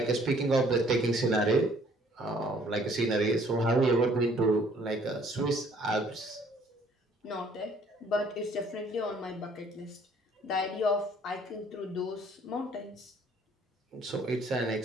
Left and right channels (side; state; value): both; normal; correlation 0.59